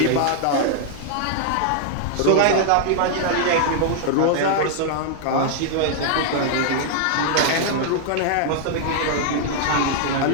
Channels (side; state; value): both; different; correlation -0.01